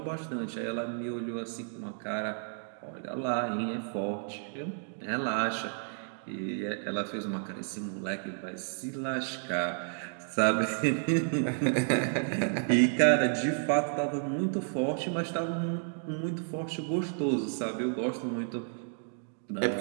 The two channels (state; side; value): silent; left; digital silence